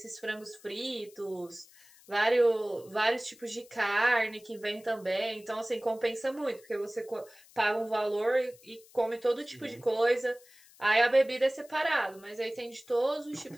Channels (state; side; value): noise; left; hiss, 25 dB below the sound